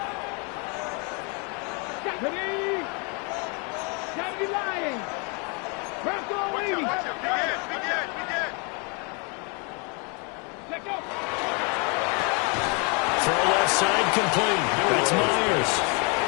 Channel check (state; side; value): quieter; right; 33.7 dB